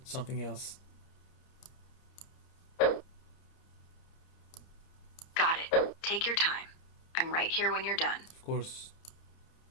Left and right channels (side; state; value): right; late; 30 ms